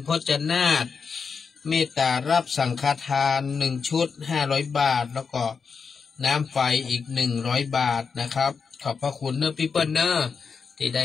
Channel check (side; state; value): right; quieter; 5.6 dB